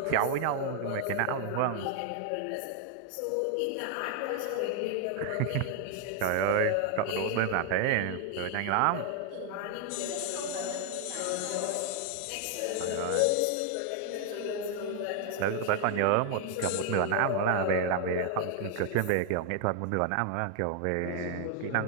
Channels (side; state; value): both; different; correlation 0.00